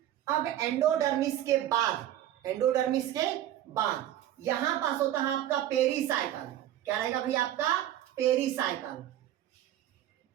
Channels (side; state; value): left; quieter; 12.3 dB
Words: अब एंडोडर्मिस के बाद, एंडोडर्मिस के बाद यहां पास होता है आपका पेरीसाइकल। क्या रहेगा भाई? आपका पेरीसाइकल।